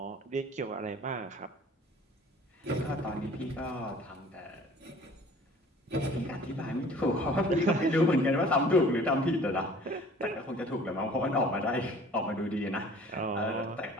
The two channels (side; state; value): both; normal; correlation 0.49